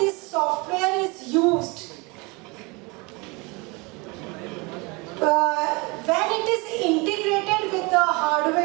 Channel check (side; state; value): left; quieter; 27.3 dB